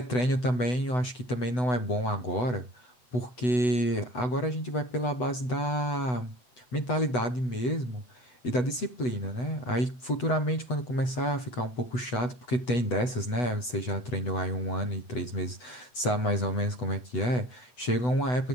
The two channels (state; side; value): late; right; 8.0 ms